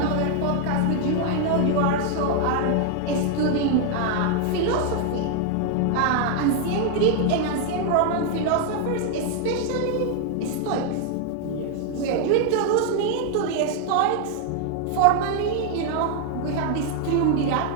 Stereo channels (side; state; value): both; different; correlation 0.00